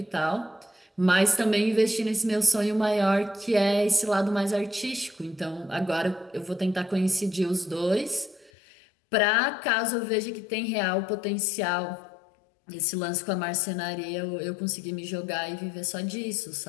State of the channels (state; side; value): drops out; right; at 8.5 s